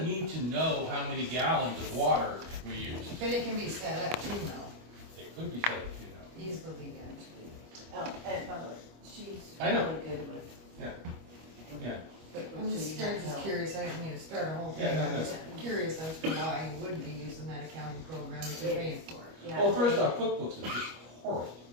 need to know how many gallons of water we use. But it can be set up too, though. It could be set up, Easily, Oh, and by the way, she's I know. really good with. Yeah. I'm just curious, I didn't mean to start a whole thing. Yeah, no, I'm no. just curious as to why you wouldn't be using that accounting program if you're paying for it. Yeah. Well, first off, QuickBooks is just horrible.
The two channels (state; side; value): late; left; 25 ms